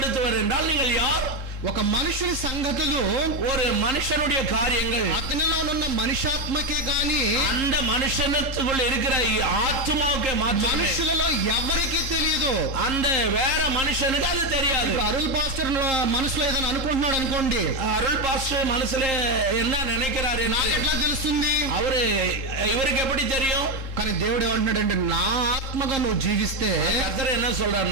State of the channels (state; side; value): late; left; 3.8 ms